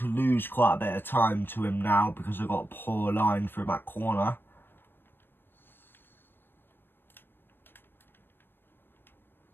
lose quite a bit of time to him now because I got a poor line through that corner.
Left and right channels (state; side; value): late; right; 0.098 ms